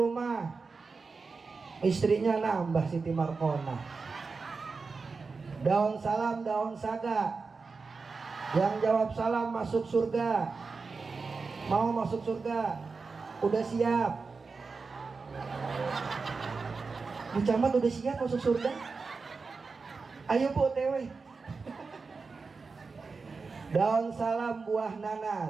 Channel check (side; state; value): left; quieter; 4.5 dB